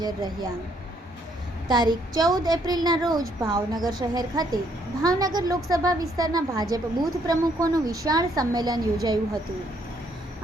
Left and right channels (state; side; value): normal; both; correlation 0.69